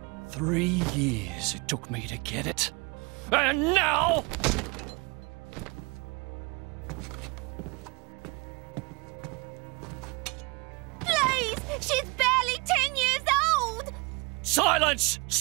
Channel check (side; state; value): left; quieter; 28.2 dB